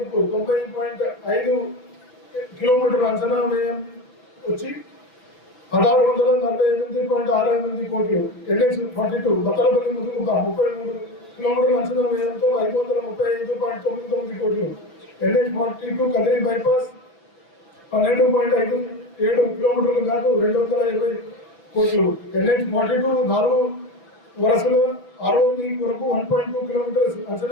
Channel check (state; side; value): late; right; 5.9 ms